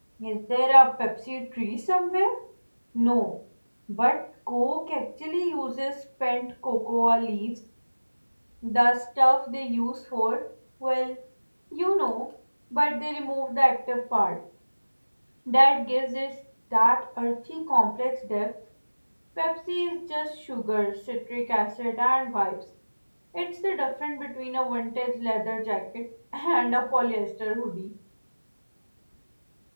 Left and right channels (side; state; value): both; inverted; correlation -1.00